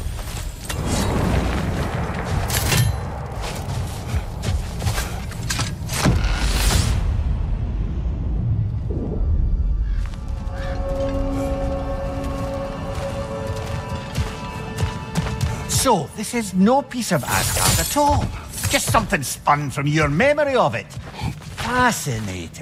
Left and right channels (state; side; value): identical; both; correlation 1.00